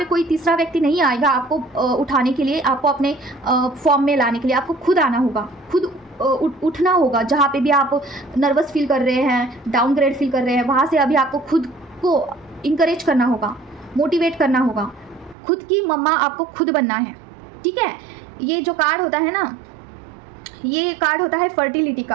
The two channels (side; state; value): left; drops out; at 15.4 s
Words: कोई तीसरा व्यक्ति नहीं आएगा आपको उठाने के लिए, आपको अपने फॉर्म में लाने के लिए आपको खुद आना होगा, खुद उठना होगा। जहाँ पे भी आप नर्वस फील कर रहे हैं, डाउनग्रेड फील कर रहे हैं, वहाँ से अभी आपको खुद को इंकरेज करना होगा, मोटिवेट करना होगा, खुद की मम्मा आपको खुद बनना है, ठीक है। ये जो कार्ड होता है ना, ये कार्ड होता है फर्टिलिटी